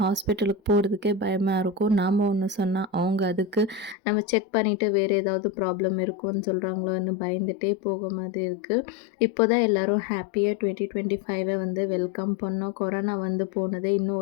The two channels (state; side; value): drops out; right; at 4.0 s